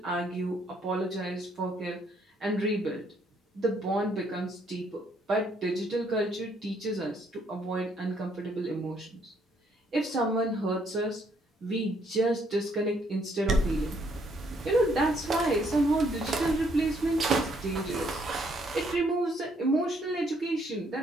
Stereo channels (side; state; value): both; normal; correlation 0.68